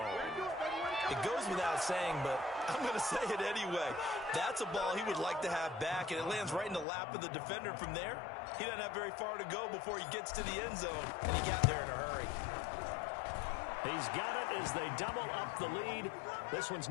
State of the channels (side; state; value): right; drops out; at 6.9 s